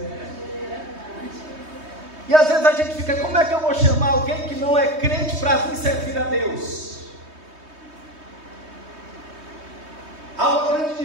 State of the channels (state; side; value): late; left; 3.2 ms